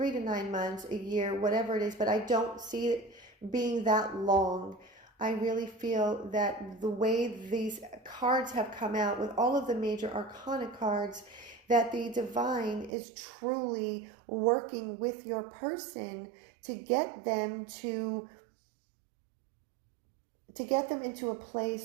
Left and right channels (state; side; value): drops out; left; at 12.9 s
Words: to 9 months, a year, whatever it is. But I don't see it being that long. I really feel that the way these cards have come out with all of the major arcana cards, that the divine is truly working with your person to get them into a